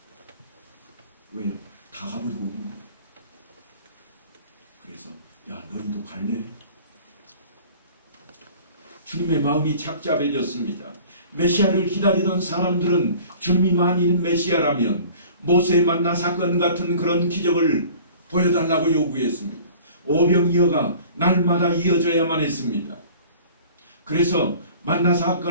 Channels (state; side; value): inverted; both; correlation -0.46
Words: 왜요? 다 가버리고 오는 거예요. 그래서 야, 너희도 갈래? 주님의 마음이 착잡해졌습니다. 메시아를 기다리던 사람들은 주님이 만일 메시아라면 모세 만나 사건 같은 그런 기적을 보여달라고 요구했습니다. 오병이어가 날마다 이어져야만 했습니다. 그래서 만나